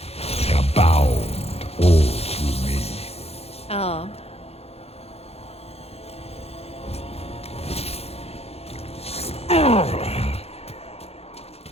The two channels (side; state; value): right; late; 0.29 ms